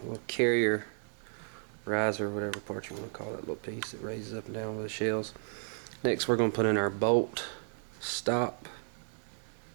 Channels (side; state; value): left; silent; 55 dB below the other